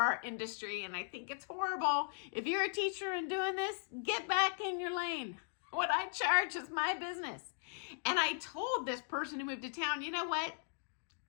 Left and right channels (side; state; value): right; silent; digital silence